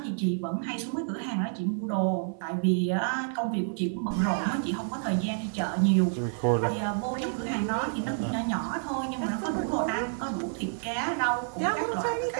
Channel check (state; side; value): silent; left; 55 dB below the other